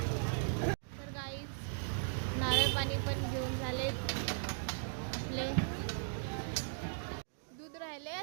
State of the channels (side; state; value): left; silent; digital silence